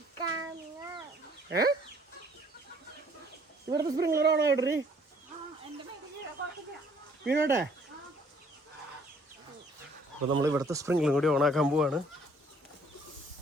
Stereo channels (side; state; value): both; normal; correlation 0.60